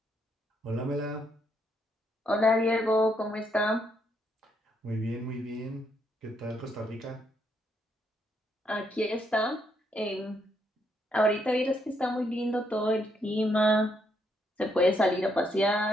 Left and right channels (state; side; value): normal; both; correlation 0.75